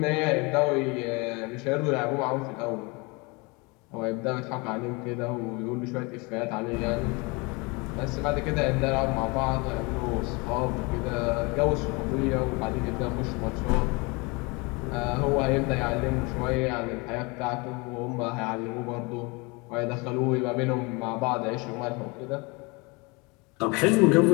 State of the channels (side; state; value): right; quieter; 27.7 dB